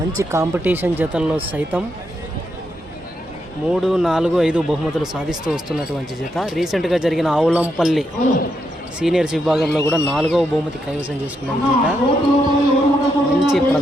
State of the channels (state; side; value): normal; both; correlation 0.81